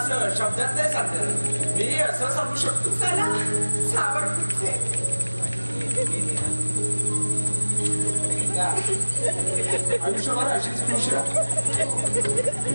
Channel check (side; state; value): both; inverted; correlation -1.00